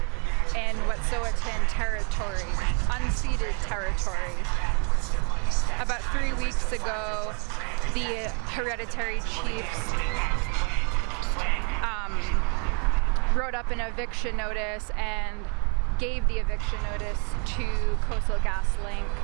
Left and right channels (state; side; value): quieter; left; 36.8 dB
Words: in Wet'suwet'en territory, unceded territory. About 3 weeks ago, the Hereditary Chiefs wrote up an eviction notice and gave the eviction notice to Coastal GasLink,